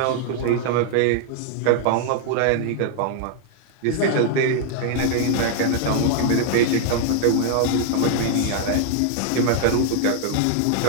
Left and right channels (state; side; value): different; both; correlation 0.00